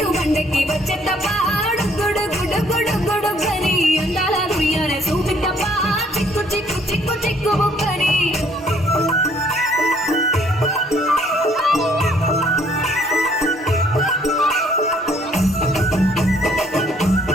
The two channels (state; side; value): normal; both; correlation 0.63